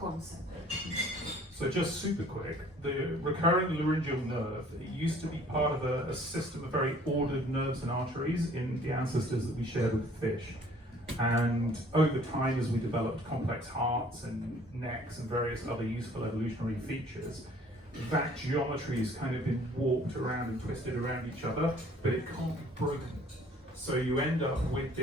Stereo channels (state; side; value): normal; both; correlation 0.55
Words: So just super quick, the recurrent laryngeal nerve, it used to be part of a system of very ordered nerves and arteries in the ancestors that we shared with fish. And over time, as we developed complex hearts and necks and various other useful evolutionary features, that geometry has kind of been warped around and twisted around each other, but it can't be broken. So you end up with